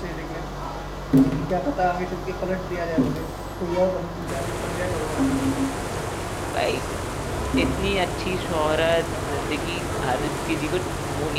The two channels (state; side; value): identical; both; correlation 1.00